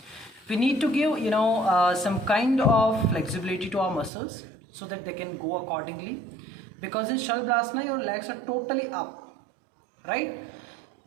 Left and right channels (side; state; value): left; drops out; at 4.1 s